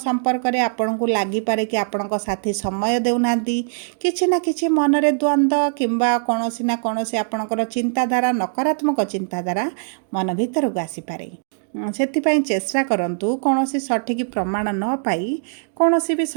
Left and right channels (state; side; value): silent; left; digital silence